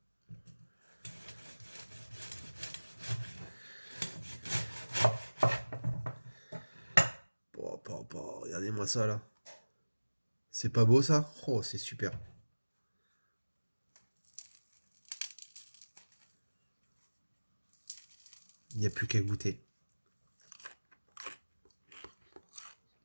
Regardez-moi ça là. C'est pas beau ça? Oh, c'est super. Il n'y a plus qu'à goûter.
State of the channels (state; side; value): inverted; both; correlation -1.00